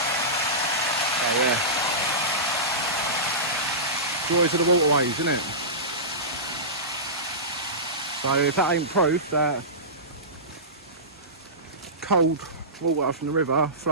So yeah, joys of the waterways, isn't it? So if that ain't proof that cold water from the river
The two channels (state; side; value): normal; both; correlation -0.20